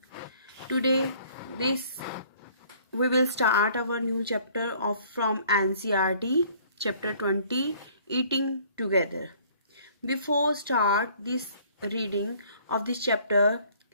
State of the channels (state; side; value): inverted; both; correlation -0.57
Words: Today we will start our new chapter from NCERT, chapter 20, Eating Together. Before start this reading of this chapter,